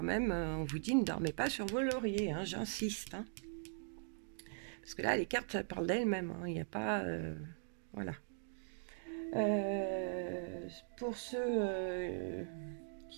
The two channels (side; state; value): left; silent; digital silence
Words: même, on vous dit ne dormez pas sur vos lauriers, hein, j'insiste. Hein. Parce que là, les cartes parlent d'elles-mêmes, hein, il n'y a pas... voilà. Pour ceux